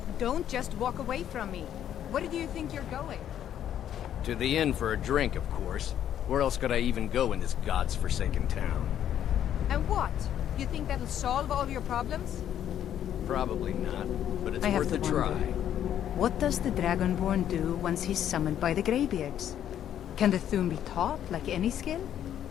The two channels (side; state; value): right; quieter; 10.4 dB